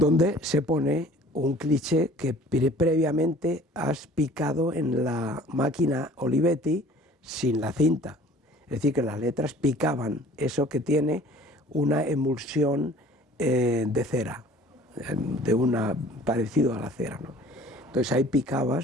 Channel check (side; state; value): both; normal; correlation 0.50